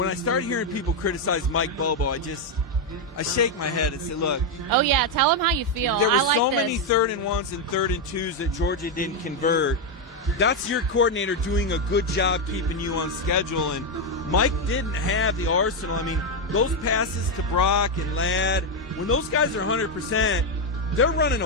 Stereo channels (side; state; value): both; normal; correlation 0.04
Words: I start hearing people criticize Mike Bobo, I shake my head and say, look. Oh, yeah, tell them how you feel. There were I like so this. many 3rd and 1s and 3rd and 2s that Georgia didn't convert. That's your coordinator doing a good job keeping you on schedule, and Mike didn't have the arsenal. I mean, those passes to Brock and Ladd, when those guys are 100%, they're running